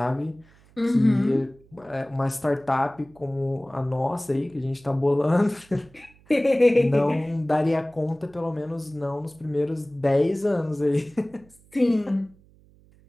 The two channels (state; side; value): noise; right; hum, 28 dB below the sound